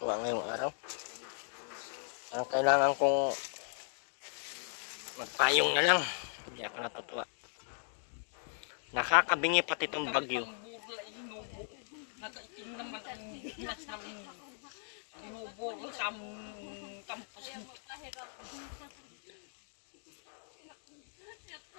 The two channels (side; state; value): right; silent; digital silence